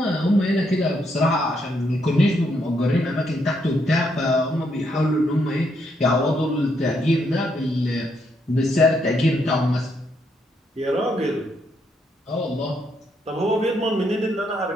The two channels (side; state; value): both; normal; correlation 0.76